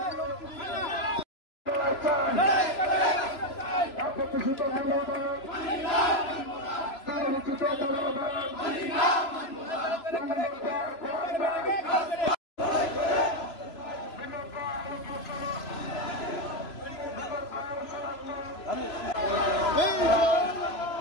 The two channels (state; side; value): late; right; 3.0 ms